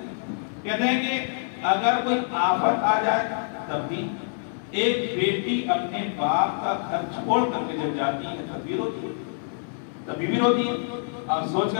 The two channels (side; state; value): right; silent; digital silence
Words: کہتے ہیں کہ اگر کوئی آفت آ جائے تب بھی ایک بیٹی اپنے باپ کا گھر چھوڑ کر کے جب جاتی ہے تب بھی روتی ہے. تبھی بھی روتی ہے. آپ سوچ